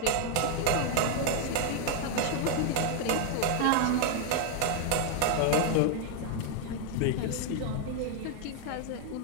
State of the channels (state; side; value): different; both; correlation 0.00